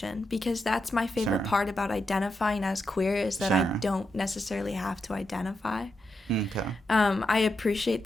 because that's my favorite part about identifying as queer, is that I don't necessarily have to identify. Okay. I appreciate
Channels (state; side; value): normal; both; correlation 0.85